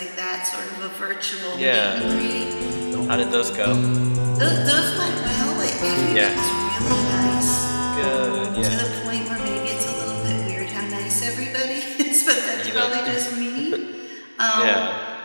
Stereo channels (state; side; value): inverted; both; correlation -1.00